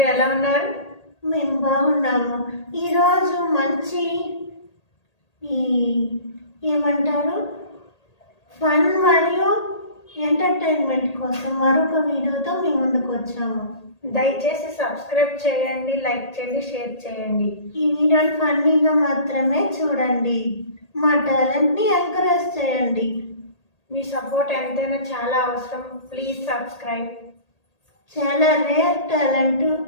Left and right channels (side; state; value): right; late; 1.8 ms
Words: ఎలా ఉన్నారు? మేము బాగున్నాము. ఈరోజు మంచి ఈ ఏమంటారు ఫన్ మరియు ఎంటర్టైన్మెంట్ కోసం మరొక వీడియోతో మీ ముందుకు వచ్చాము. దయచేసి సబ్స్క్రైబ్ చేయండి, లైక్ చేయండి, షేర్ చేయండి. ఈ వీడియోని ఫన్నీగా మాత్రమే చూడండి. మా టాలెంట్ని ఎంకరేజ్ చేయండి. మీ సపోర్ట్ ఎంతైనా చాలా అవసరం. Please subscribe. చాలా రేర్ టాలెంట్